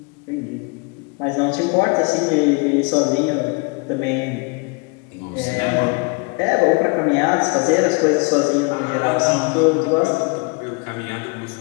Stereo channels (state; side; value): quieter; right; 30.9 dB